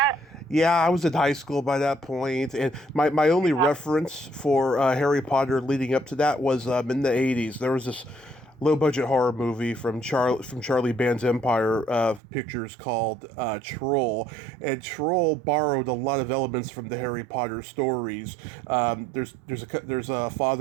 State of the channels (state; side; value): drops out; left; at 12.2 s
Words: Yeah, I was in high school by that point, and my only reference for Harry Potter leading up to that was in the 80s. There was this low-budget horror movie from Charlie Band's Empire Pictures called Troll, and Troll borrowed a lot of elements from the Harry Potter stories. There's a